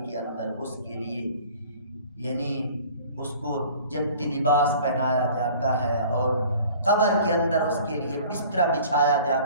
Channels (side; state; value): both; inverted; correlation -0.48